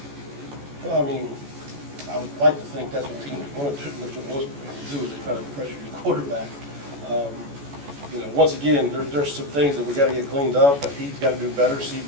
Well, I mean, I would like to think that's what teams want to do is they try to pressure your quarterback. Once again, there's some things that we got to get cleaned up, that he's got to do better, see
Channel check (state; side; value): late; left; 14 ms